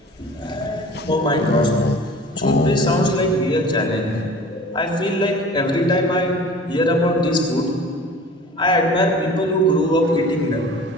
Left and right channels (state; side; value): normal; both; correlation 0.42